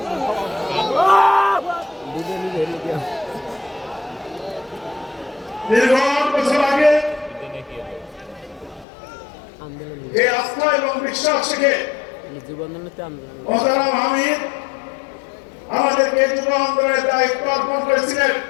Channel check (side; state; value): right; drops out; at 8.8 s